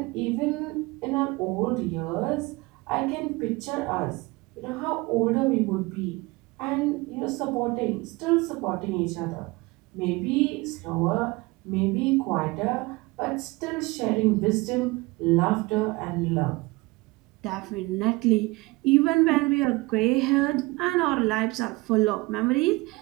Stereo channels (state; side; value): quieter; left; 23.1 dB